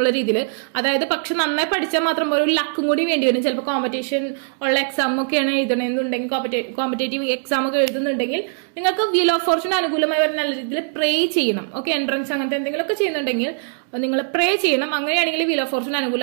രീതിയിൽ, അതായത് പക്ഷെ നന്നായി പഠിച്ചാൽ മാത്രം ഒരു ലക്കും കൂടി വേണ്ടി വരും. ചിലപ്പോൾ കോമ്പറ്റീഷൻ ഉള്ള എക്സാം ഒക്കെയാണ് എഴുതണമെന്നുണ്ടെങ്കിൽ, കോമ്പറ്റേറ്റീവ് എക്സാം ഒക്കെ എഴുതുന്നുണ്ടെങ്കിൽ നിങ്ങൾക്ക് വീൽ ഓഫ് ഫോർച്യൂൺ അനുകൂലമായി വരെ നല്ല രീതിയിൽ പ്രേ ചെയ്യണം. ഓക്കെ, എൻട്രൻസ് അങ്ങനത്തെ എന്തെങ്കിലുമൊക്കെ ചെയ്യുന്നുണ്ടെങ്കിൽ നിങ്ങൾ പ്രേ ചെയ്യണം. അങ്ങനെയാണെങ്കിൽ വീൽ ഓഫ് ഫോർച്യൂൺ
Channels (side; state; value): left; silent; 65 dB below the other